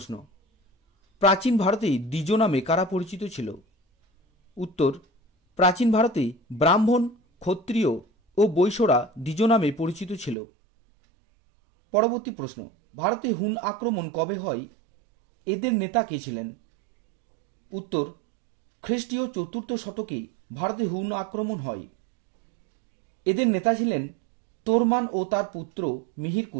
প্রাচীন ভারতে দ্বিজ নামে কারা পরিচিত ছিল? উত্তর, প্রাচীন ভারতে ব্রাহ্মণ, ক্ষত্রিয় ও বৈশ্যরা দ্বিজ নামে পরিচিত ছিল। পরবর্তী প্রশ্ন, ভারতে হুন আক্রমণ কবে হয়? এদের নেতা কে ছিলেন? উত্তর, খ্রিস্টীয় 4র্থ শতকে ভারতে হুন আক্রমণ হয়। এদের নেতা ছিলেন তোরমান ও তার পুত্র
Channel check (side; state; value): left; drops out; at 10.4 s